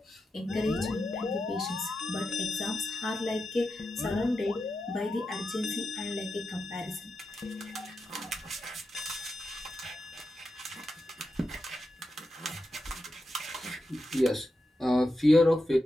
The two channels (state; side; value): normal; both; correlation 0.89